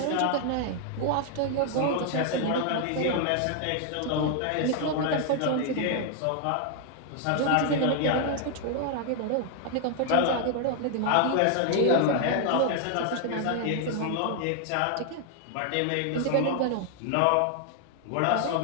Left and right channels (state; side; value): different; both; correlation 0.00